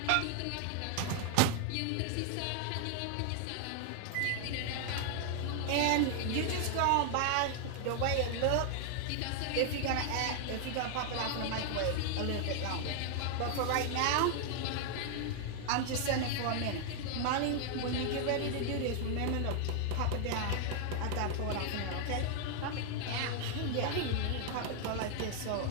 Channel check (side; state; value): both; different; correlation 0.00